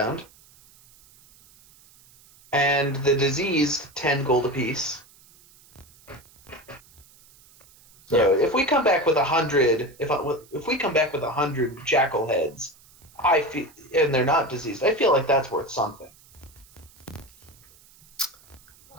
And the diseased, 10 gold apiece. So if we come back with 100, if we come back with 100 jackal heads, I feel, and they're not diseased, I feel like that's worth something.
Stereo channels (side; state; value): right; noise; hiss, 27 dB below the sound